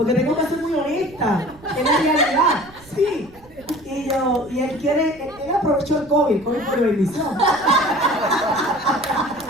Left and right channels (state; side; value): noise; right; rumble, 24 dB below the sound